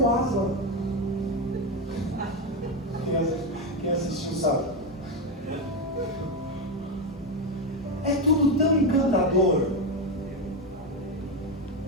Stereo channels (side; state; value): both; normal; correlation 0.11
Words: Aslan? Quem assistiu sabe. É tudo tão encantador.